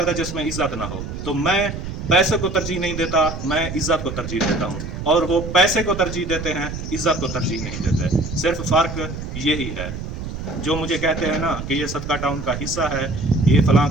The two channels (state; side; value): noise; right; rumble, 7 dB below the sound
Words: जिसमें इज्जत ना हो। तो मैं पैसे को तरजीह नहीं देता, मैं इज्जत को तरजीह देता हूँ, और वो पैसे को तरजीह देते हैं, इज्जत को तरजीह नहीं देते। सिर्फ फ़र्क यही है। जो मुझे कहते हैं ना कि ये सदका टाउन का हिस्सा है, ये फलां